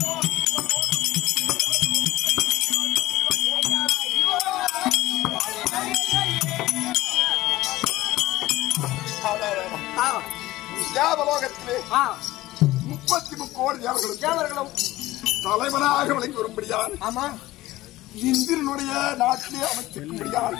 தேவலோகத்திலே 33 கோடி தேவர்களும் தலைவனாக விளங்கி வரும்படியான். ஆமா, இந்திரனுடைய நாட்டிலே அமைச்சிருக்கும்படியான்.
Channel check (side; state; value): right; quieter; 17.1 dB